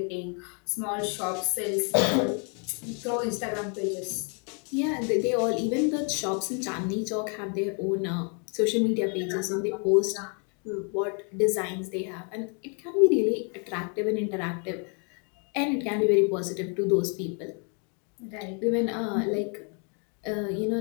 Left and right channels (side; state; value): right; quieter; 38.4 dB